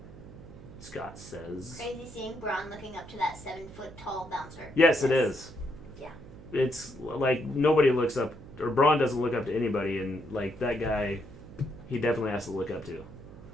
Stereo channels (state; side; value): noise; right; hum, 17 dB below the sound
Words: Scott says. Crazy seeing Braun looking up to that 7-foot-tall bouncer. Yes, it is. Yeah. It's like nobody looks up, or Braun doesn't look up to anybody, and like that guy, he definitely has to look up to.